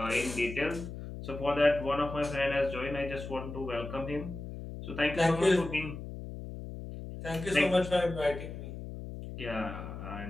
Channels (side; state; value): left; noise; hum, 9 dB below the sound